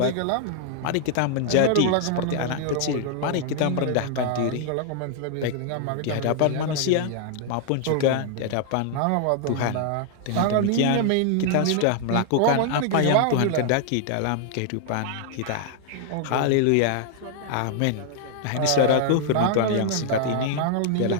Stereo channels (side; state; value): both; different; correlation 0.00